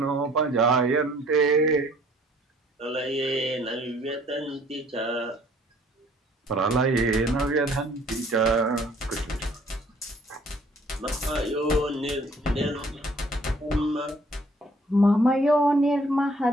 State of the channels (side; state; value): both; normal; correlation 0.58